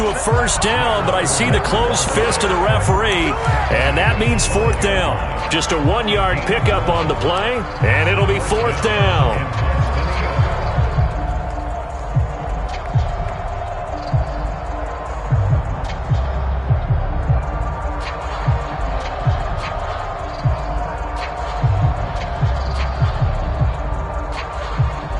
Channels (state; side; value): identical; both; correlation 1.00